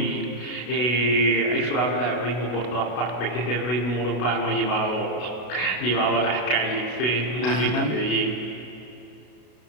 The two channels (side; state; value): right; late; 33 ms